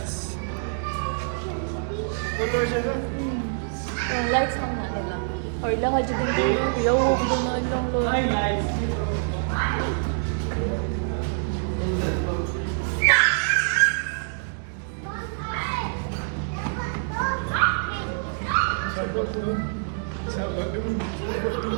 Yung lights lang na, diba? Or lahat dyan din. Yo, gano'n lang lang.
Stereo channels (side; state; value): left; silent; digital silence